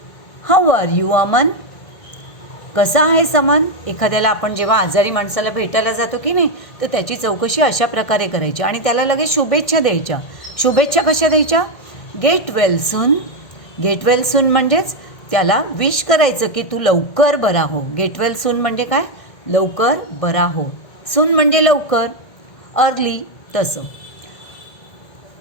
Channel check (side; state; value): right; late; 1.6 ms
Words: How are you Aman. कसा आहेस अमन. एखाद्याला आपण जेव्हा आजारी माणसाला भेटायला जातो की नाही तर त्याची चौकशी अशा प्रकारे करायची आणि त्याला लगेच शुभेच्छा द्यायच्या. शुभेच्छा कशा द्यायच्या? गेट वेल सून. गेट वेल सून म्हणजेच त्याला विश करायचं की तू लवकर बरा हो. गेट वेल सून म्हणजे काय? लवकर बरा हो. सून म्हणजे लवकर, अर्ली तसं.